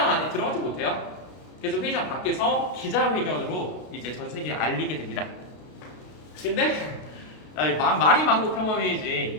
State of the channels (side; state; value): right; late; 32 ms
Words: 안에 들어가지 못해요. 그래서 회의장 밖에서 기자회견으로 이제 전 세계에 알리게 됩니다. 근데 말이 만국